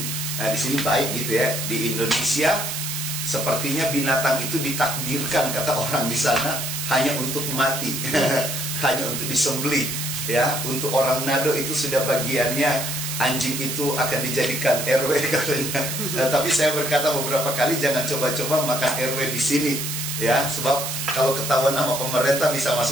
Nah, di sini baik gitu ya. Di Indonesia sepertinya binatang itu ditakdirkan, kata orang di sana, hanya untuk mati, hanya untuk disembelih ya. Untuk orang Nado itu sudah bagiannya, anjing itu akan dijadikan RW katanya. Nah, tapi saya berkata beberapa kali, jangan coba-coba makan RW di sini ya, sebab kalau ketahuan sama pemerintah bisa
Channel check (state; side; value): noise; right; hiss, 4 dB below the sound